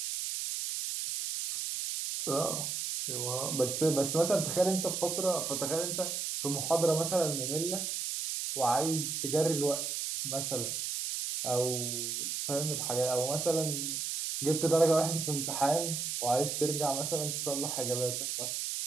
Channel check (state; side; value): noise; right; hiss, 2 dB below the sound